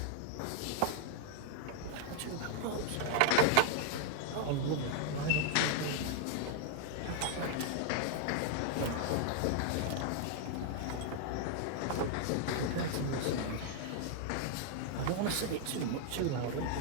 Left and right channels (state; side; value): different; both; correlation 0.00